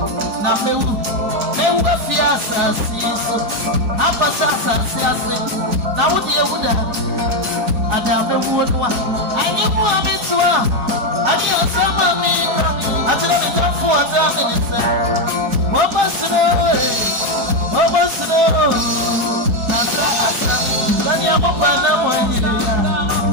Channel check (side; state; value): left; late; 4.7 ms